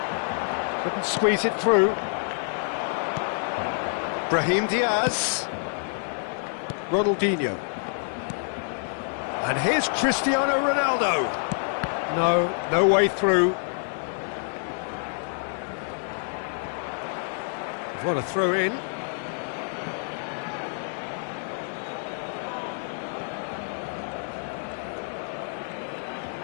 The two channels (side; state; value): right; silent; 58 dB below the other